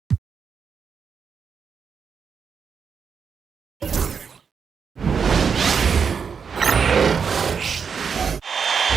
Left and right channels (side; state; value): left; quieter; 6.3 dB